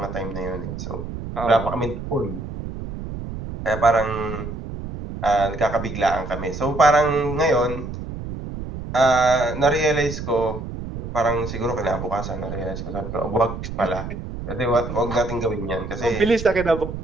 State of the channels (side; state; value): right; noise; rumble, 8 dB below the sound